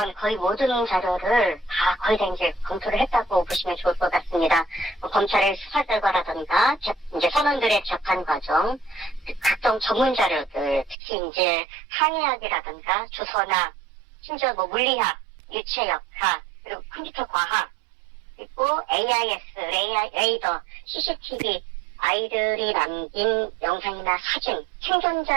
거의 모든 자료를 거의 다 이제 검토를 했다고 보시면 좋을 것 같습니다. 검찰의 수사 결과라든가 이제 선원들의 재판 과정, 각종 전문 자료들, 특히 이제 항해학이라든가 주선학, 심지어 물리학, 유체역학, 그리고 컴퓨터 과학, 그리고 AIS, 레이더, CCTV, 아이들이 남긴 영상이나 사진,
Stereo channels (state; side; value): drops out; left; at 11.0 s